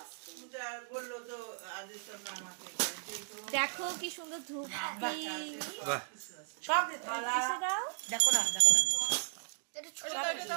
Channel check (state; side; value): silent; left; digital silence